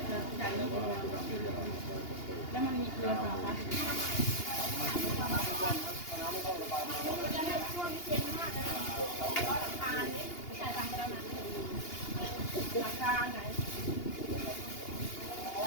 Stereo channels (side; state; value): right; late; 2.8 ms